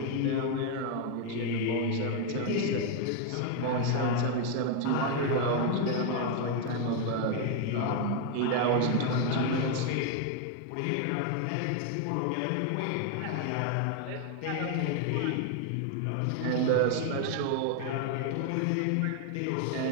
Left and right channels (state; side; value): different; both; correlation 0.01